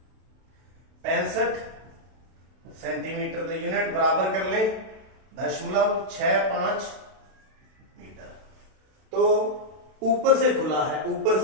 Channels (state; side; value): late; left; 32 ms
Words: 65 सेंटीमीटर, तो यूनिट बराबर कर ले 0.65 मीटर। तो ऊपर से खुला है, ऊपर